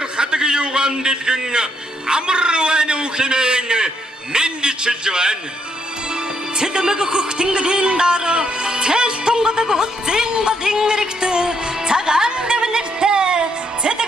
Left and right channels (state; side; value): normal; both; correlation 0.74